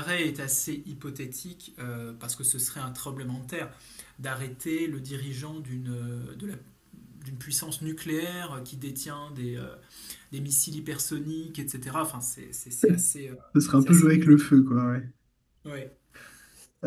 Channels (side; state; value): both; identical; correlation 1.00